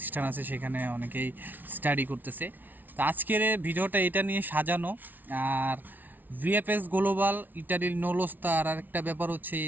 আছে, সেখানে অনেকেই স্টাডি করতেছে। তো আজকের ভিডিওটা এটা নিয়ে সাজানো। আর ভিএফএস গ্লোবাল ইটালির নৌলস্তা, আর একটা ব্যাপার হচ্ছে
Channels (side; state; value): left; late; 0.085 ms